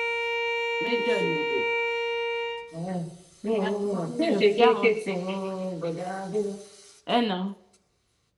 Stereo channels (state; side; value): identical; both; correlation 1.00